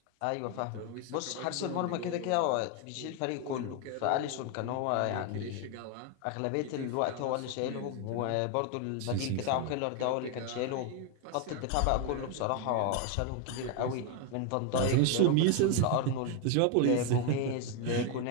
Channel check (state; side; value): different; both; correlation 0.01